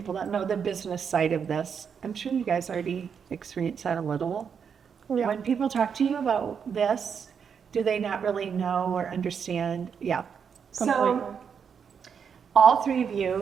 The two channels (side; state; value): left; quieter; 6.9 dB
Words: don't know the business side of this. I'm sure you guys already experienced that a little. Yeah. When people talk to you about this, do they not really know or understand? Yeah. Completely. So all three of